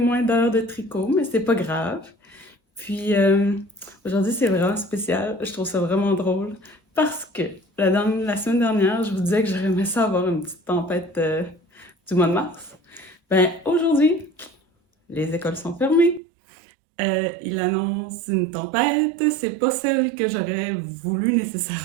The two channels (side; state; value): left; drops out; at 16.2 s